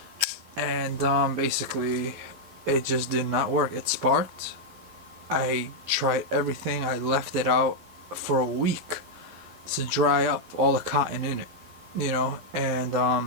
And basically it just did not work. It sparked. I tried everything. I left it out for a week to dry up all the cotton in it,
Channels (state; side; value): late; left; 12 ms